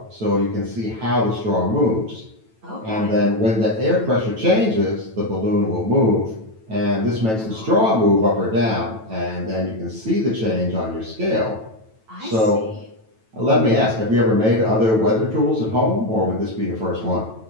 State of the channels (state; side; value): late; left; 9.1 ms